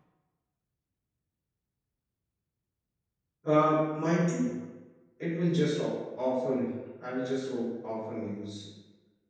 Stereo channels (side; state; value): both; identical; correlation 1.00